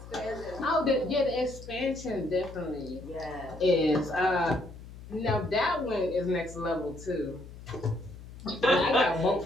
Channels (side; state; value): left; noise; hum, 15 dB below the sound